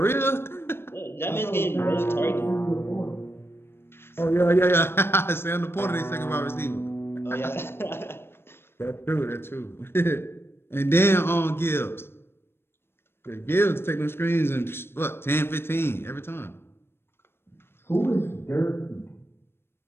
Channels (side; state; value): right; late; 0.11 ms